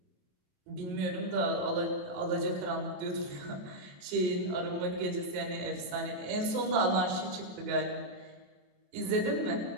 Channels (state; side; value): late; left; 27 ms